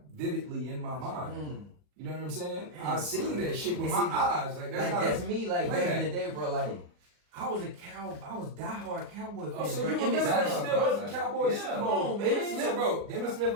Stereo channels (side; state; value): left; late; 40 ms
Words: vividly in my mind. You know what I'm saying? I seen that shit with my eyes. Like that's not That's me, like back playback. in the day, bro. Like I was diehard Cowboy fan. Oh, so bro. you And remember this that was- still was a Cowboys Super Bowl? come on, man. Emmitt Smith, bro. Emmitt Smith,